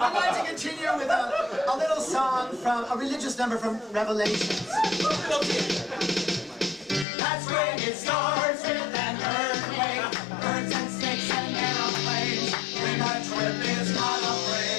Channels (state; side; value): drops out; right; at 7.1 s